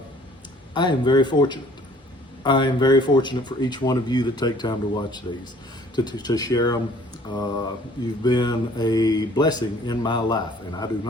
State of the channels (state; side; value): normal; both; correlation 0.55